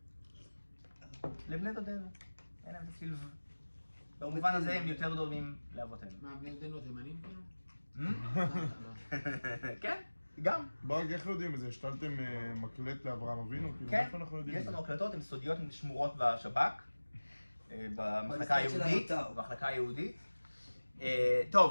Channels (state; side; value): inverted; both; correlation -1.00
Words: לבני דודינו. אין להם צליל במובן הזה הם יותר דומים לאבותינו. מה, בני דודינו תימנים כאילו? כן, גם. ברק, איך יודעים את זה? השתלתם מקלט לאברהם אבינו? כאילו, כן, איפה אנחנו יודעים יש את זה? לנו הקלטות, הן סודיות, הן שמורות בשב"כ, במחלקה במשרד של היהודית, האתר. במחלקה היהודית.